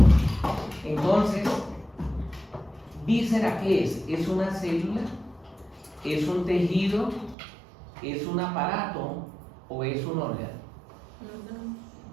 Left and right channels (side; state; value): left; drops out; at 7.4 s